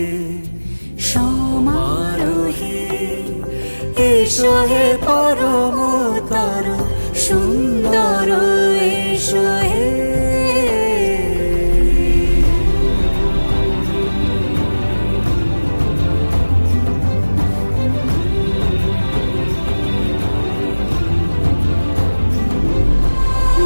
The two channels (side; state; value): both; inverted; correlation -1.00